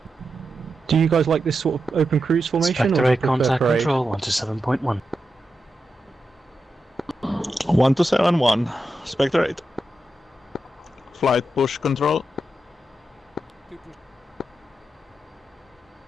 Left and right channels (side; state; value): both; normal; correlation 0.88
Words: Do you guys like this sort of open cruise formation? Spectre or do you 8 prefer contact parade? control 127.1. 1271, Spectre 8. Flight push control. Two push.